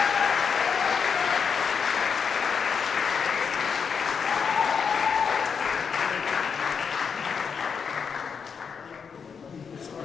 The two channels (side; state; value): right; quieter; 6.3 dB